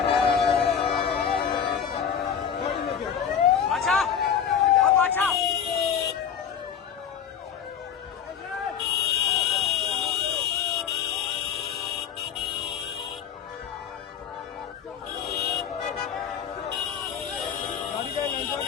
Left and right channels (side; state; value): right; quieter; 8.0 dB